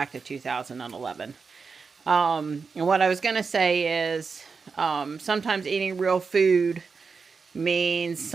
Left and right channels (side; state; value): left; quieter; 5.1 dB